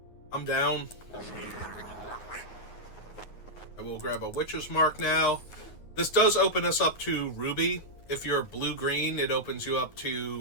I'm down. I will grab a Witch's Mark now. This does open us up to Ruby. If you're blue-green, it opens you up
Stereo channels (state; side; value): late; right; 9.6 ms